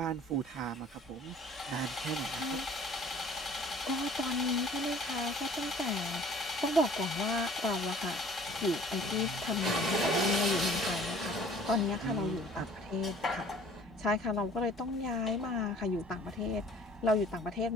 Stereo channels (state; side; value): normal; both; correlation 0.50